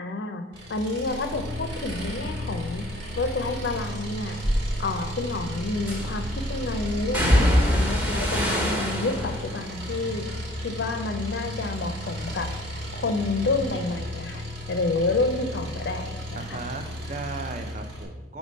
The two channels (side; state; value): both; normal; correlation 0.48